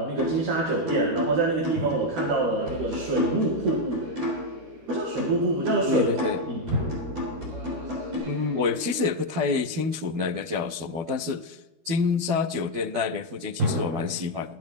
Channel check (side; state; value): left; late; 12 ms